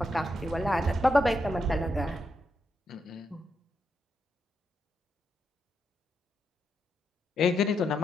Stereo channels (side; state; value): both; normal; correlation 0.82